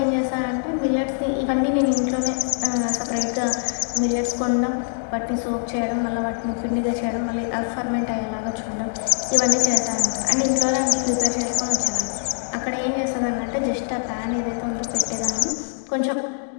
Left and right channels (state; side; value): silent; right; digital silence